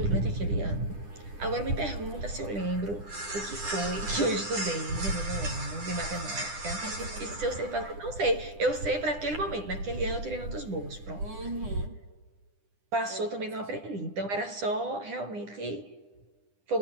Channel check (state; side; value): late; left; 10 ms